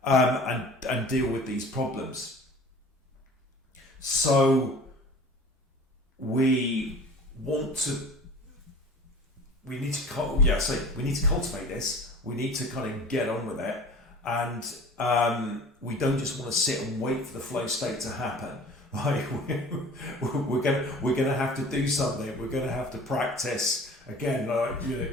and deal with these problems. So we need to cultivate this. We need to kind of get on with it. And we don't just want to sit and wait for the flow state to happen. Right? We're gonna have to do something. We're gonna have to practice again.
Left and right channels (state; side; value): normal; both; correlation 0.43